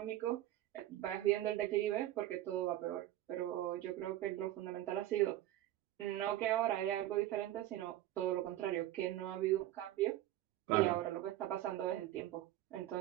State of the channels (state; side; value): quieter; left; 14.0 dB